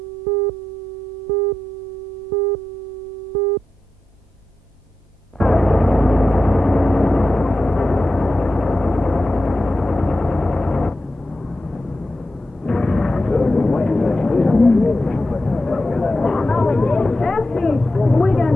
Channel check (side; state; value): both; normal; correlation 0.91